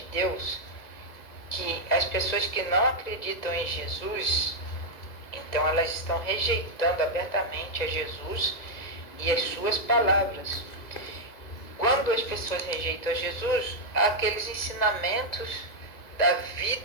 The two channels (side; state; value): right; late; 2.0 ms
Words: Deus, que as pessoas que não acreditam em Jesus, então elas estão rejeitando abertamente a Jesus e as suas palavras. Quando as pessoas rejeitam a Jesus, aqueles ensinamentos da